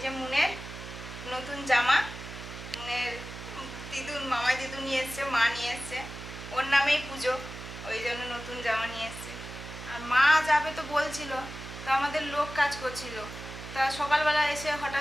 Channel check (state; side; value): noise; right; hum, 11 dB below the sound